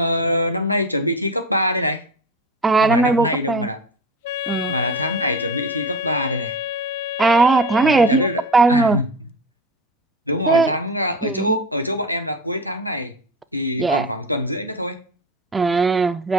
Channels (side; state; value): both; normal; correlation 0.29